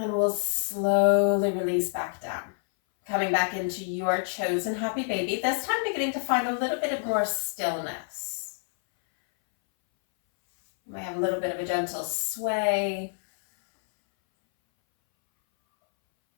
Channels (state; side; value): silent; right; 60 dB below the other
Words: we'll slowly release back down. Coming back into your chosen happy baby. This time beginning to find a little bit of more stillness. You might have a little bit of a gentle sway.